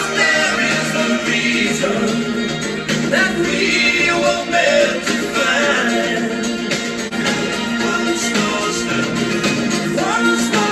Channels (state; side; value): identical; both; correlation 1.00